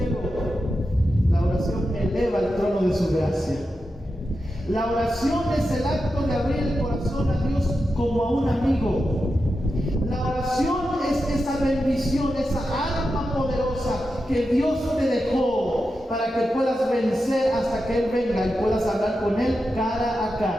la oración eleva al trono de su gracia. La oración es el acto de abrir el corazón a Dios como a un amigo. La oración es esa bendición, esa arma poderosa que Dios te dejó para que puedas vencer hasta que Él venga y puedas hablar con Él cara a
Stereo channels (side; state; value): both; normal; correlation 0.89